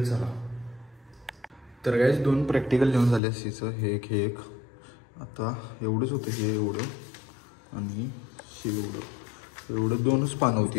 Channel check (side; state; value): right; drops out; at 3.2 s